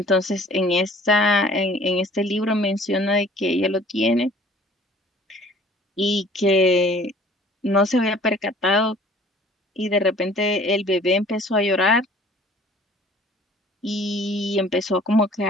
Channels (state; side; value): normal; both; correlation 0.52